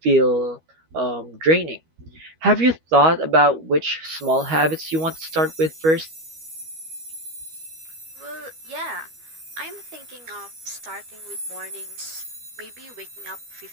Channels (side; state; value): left; late; 13 ms